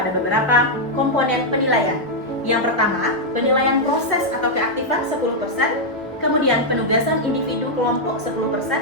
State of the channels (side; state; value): both; normal; correlation -0.03